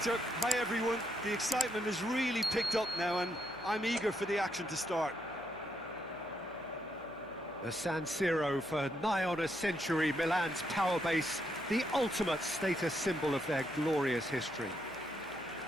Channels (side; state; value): left; noise; hum, 26 dB below the sound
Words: Hi everyone. The excitement has really picked up now and I'm eager for the action to start. The San Siro, for nigh on a century, Milan's power base, the ultimate status symbol of their glorious history.